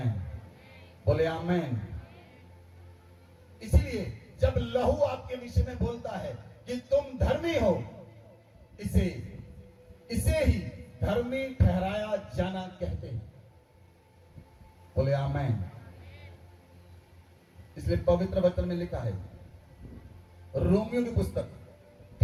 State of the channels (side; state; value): both; identical; correlation 1.00